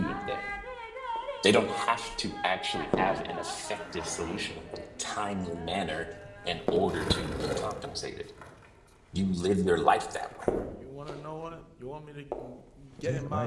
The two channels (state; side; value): identical; both; correlation 1.00